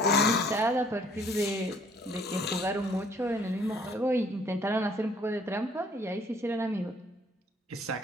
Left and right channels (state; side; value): normal; both; correlation 0.60